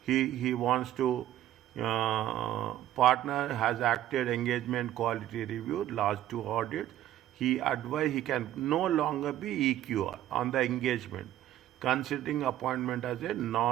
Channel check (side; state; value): left; quieter; 12.9 dB